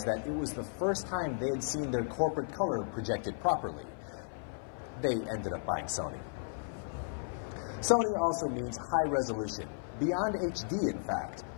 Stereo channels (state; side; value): silent; right; 55 dB below the other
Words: that it was the first time they had seen their corporate color projected properly. They ended up buying Sony. Sony also means high resolution, beyond HD in fact.